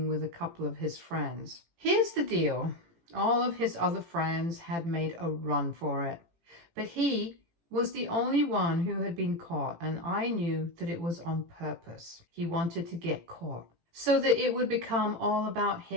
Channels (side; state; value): left; late; 18 ms